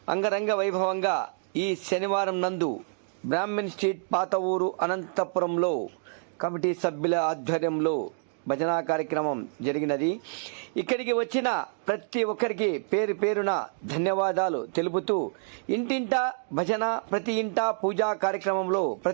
అంగరంగ వైభవంగా ఈ శనివారం నందు బ్రాహ్మణ్ స్ట్రీట్ పాత ఊరు అనంతపురంలో కమిటీ సభ్యుల ఆధ్వర్యంలో భజనా కార్యక్రమం జరిగినది. ఇక్కడికి వచ్చిన ప్రతి ఒక్కరికి పేరు పేరున ధన్యవాదాలు తెలుపుతూ ఇంటింట భజన, ప్రతి ఇంట పూజా కార్యక్రమంలో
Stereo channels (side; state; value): left; silent; 60 dB below the other